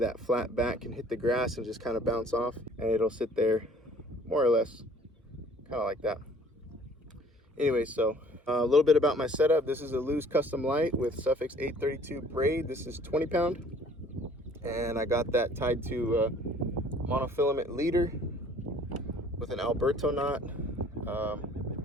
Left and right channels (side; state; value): both; normal; correlation 0.54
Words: flat back can hit the grass and just kind of bounce off, and it'll sit there more or less kind of like that. Anyway, so a little bit about my setup. This is a Lew's Custom Light with Suffix 832 braid. This is 20 pound, and I got that tied to a monofilament leader with an Alberto knot.